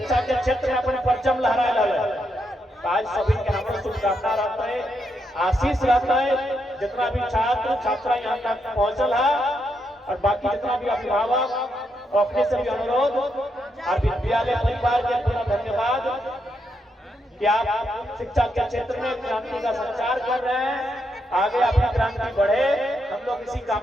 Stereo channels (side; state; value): both; normal; correlation 0.80